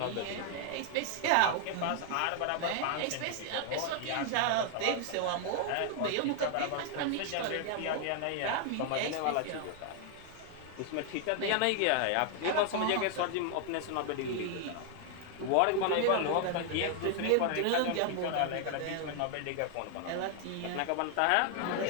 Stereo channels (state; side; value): different; both; correlation 0.00